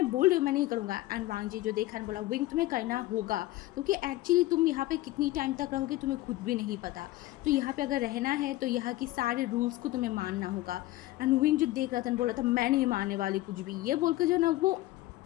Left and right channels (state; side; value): quieter; right; 17.4 dB